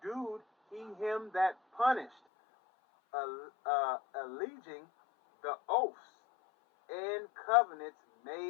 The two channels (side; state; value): right; drops out; at 2.1 s